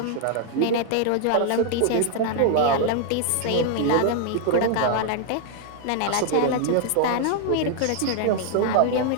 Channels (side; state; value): both; different; correlation 0.00